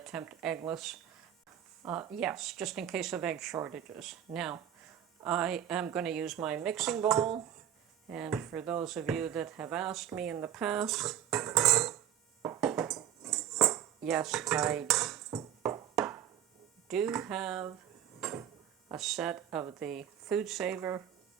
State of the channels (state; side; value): quieter; left; 10.3 dB